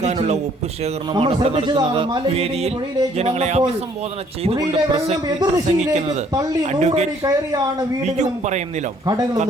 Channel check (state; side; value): normal; both; correlation 0.62